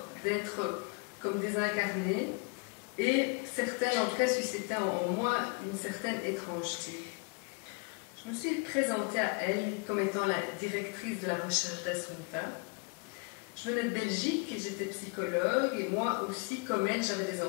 d'être comme désincarnées. Et certaines, en tout cas, suscitaient en moi une certaine étrangeté. Je me suis présentée à elle comme étant la directrice de la recherche d'Assunta. Je venais de Belgique et j'étais psychologue, et moi aussi, comme elle, j'avais des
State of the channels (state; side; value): quieter; right; 31.3 dB